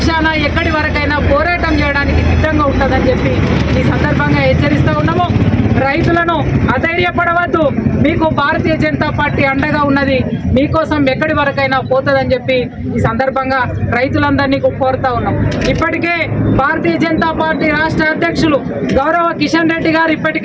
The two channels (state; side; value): identical; both; correlation 1.00